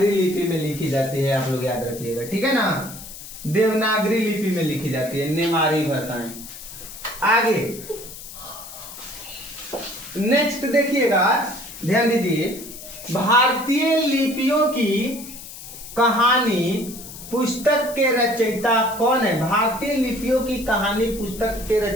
लिपि में लिखी जाती है, आप लोग याद रखिएगा, ठीक है ना। देवनागरी लिपि में लिखी जाती है नेवारी भाषाएं। आगे नेक्स्ट देखिएगा, ध्यान दीजिए, भारतीय लिपियों की कहानी पुस्तक के रचयिता कौन है? भारतीय लिपियों की कहानी पुस्तक के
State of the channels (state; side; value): noise; left; hiss, 14 dB below the sound